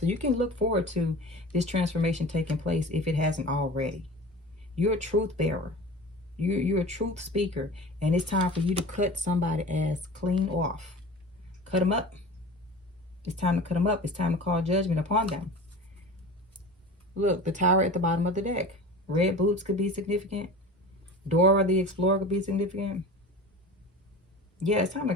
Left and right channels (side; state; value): both; normal; correlation 0.36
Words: you can look forward to this transformation taking place if it hasn't already. You're a truth bearer. You're a truth speaker, and it's time for you to cut somebody ass clean off. Cut them up. It's time to cut them up. It's time to call judgment upon them. Look, the Tower at the bottom of the deck. Red boots could be significant. Dora the Explorer could be significant. Yeah, it's time to